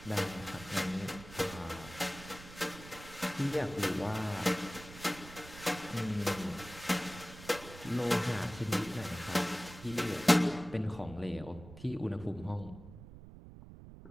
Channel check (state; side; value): noise; right; rumble, 15 dB below the sound